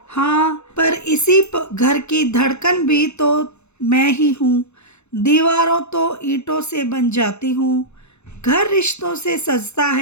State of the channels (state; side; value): late; right; 0.81 ms